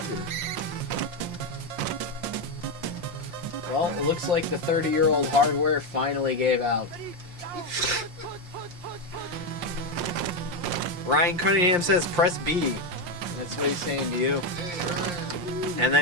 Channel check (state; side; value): late; left; 5.7 ms